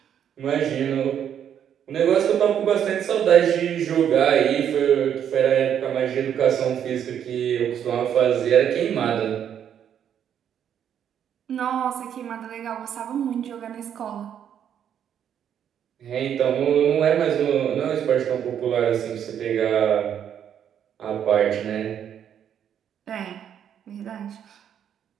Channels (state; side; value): quieter; left; 9.1 dB